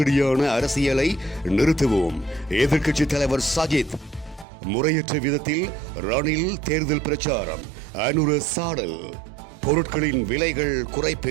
அரசியலை நிறுத்துவோம். எதிர்க்கட்சித் தலைவர் சஜித். முறையற்ற விதத்தில் ரணில் தேர்தல் பிரச்சாரம். அனுர சாடல். பொருட்களின் விலைகள்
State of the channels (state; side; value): drops out; left; at 4.5 s